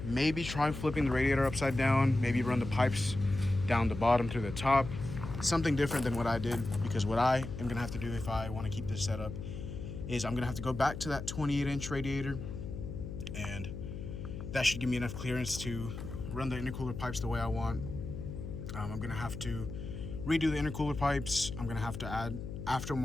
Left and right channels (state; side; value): noise; left; hum, 8 dB below the sound